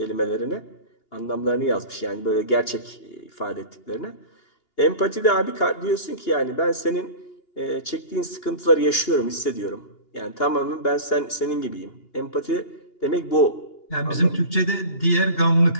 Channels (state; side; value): late; right; 2.8 ms